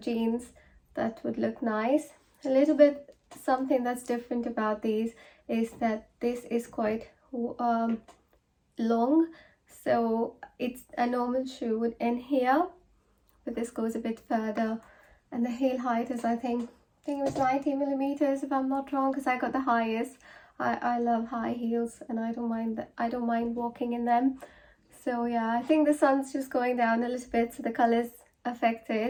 that would look nice. A little bit something that's different about these is that this is quite long, so it's a normal shoe would end here, but this goes a bit further, and the heel height is I think it was 90 millimeters if I'm not wrong, because I got the highest. I love high heels, and I don't mind walking in them. So yeah, I think the sun's just going down a little bit, so the color's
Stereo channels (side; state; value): both; identical; correlation 1.00